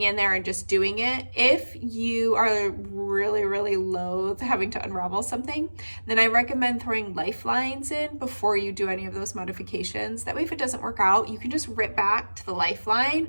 in there and just doing it. If you are really loath having to unravel something, then I recommend throwing lifelines in before you do any of those modifications. That way, if it doesn't work out, you can just rip back to the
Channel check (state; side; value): inverted; both; correlation -1.00